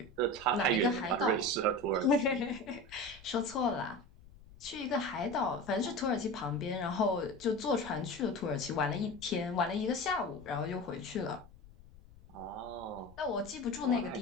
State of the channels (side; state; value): left; noise; rumble, 22 dB below the sound